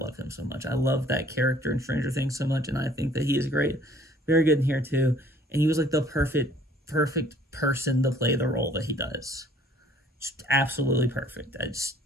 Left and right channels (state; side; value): normal; both; correlation 0.56